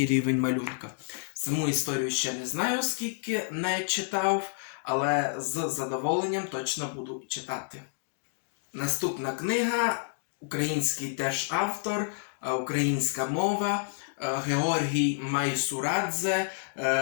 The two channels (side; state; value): right; silent; digital silence